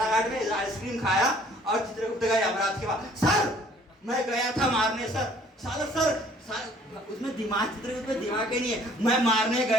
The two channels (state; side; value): normal; both; correlation 0.57